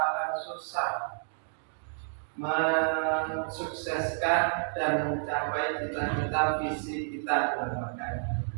susah mensukseskan dan mencapai cita-cita visi kita di lembaga ini.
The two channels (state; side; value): silent; left; digital silence